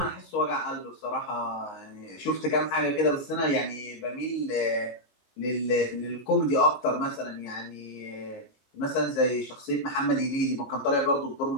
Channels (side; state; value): right; late; 19 ms